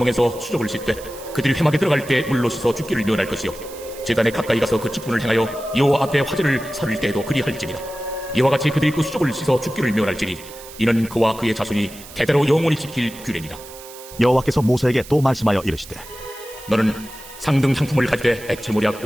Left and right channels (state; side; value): noise; right; hiss, 17 dB below the sound